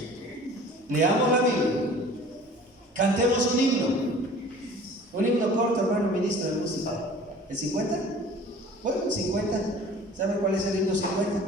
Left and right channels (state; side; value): normal; both; correlation 0.46